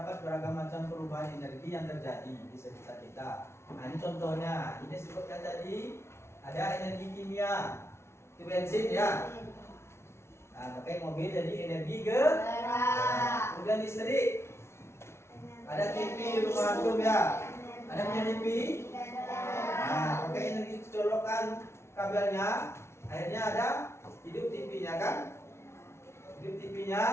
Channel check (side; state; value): right; late; 0.13 ms